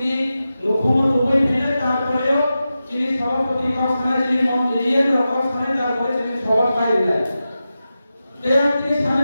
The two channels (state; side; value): inverted; both; correlation -0.92